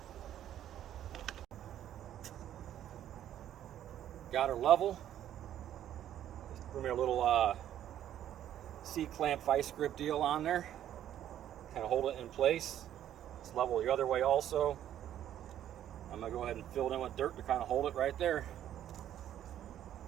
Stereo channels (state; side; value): quieter; left; 11.2 dB